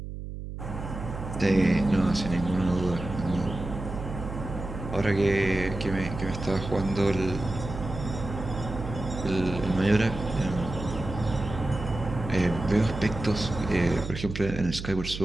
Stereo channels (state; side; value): noise; right; hum, 8 dB below the sound